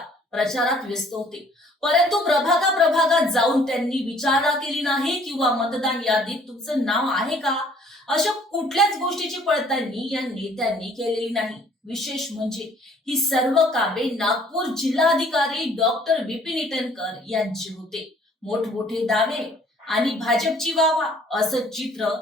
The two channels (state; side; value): normal; both; correlation 0.57